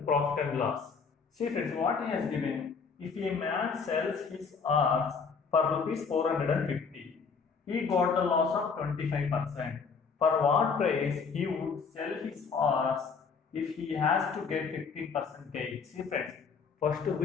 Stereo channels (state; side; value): quieter; right; 5.4 dB